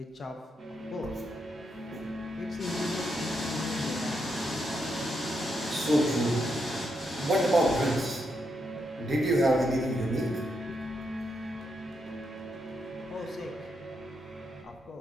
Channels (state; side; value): normal; both; correlation 0.81